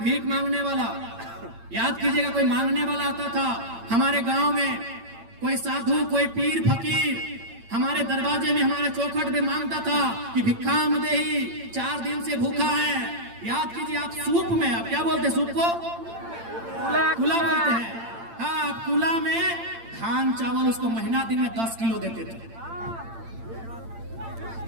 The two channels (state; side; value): late; left; 8.8 ms